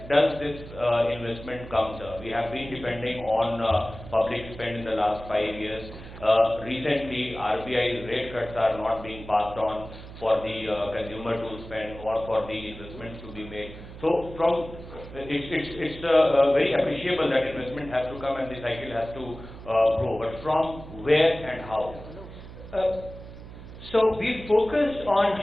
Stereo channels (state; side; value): noise; right; hum, 14 dB below the sound